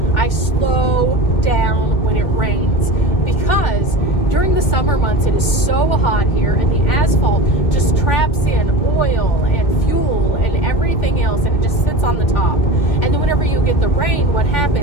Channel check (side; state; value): right; late; 2.3 ms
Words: I slow down when it rains because during the summer months, it is so hot here, and the asphalt just traps in oil and fuel and everything else, and it just sits on the top. And then when whenever you get the rain, what